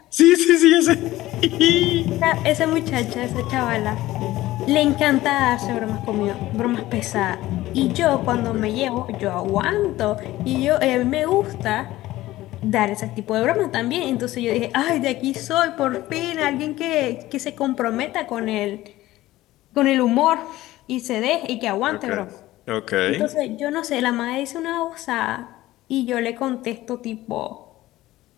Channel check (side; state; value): right; quieter; 16.5 dB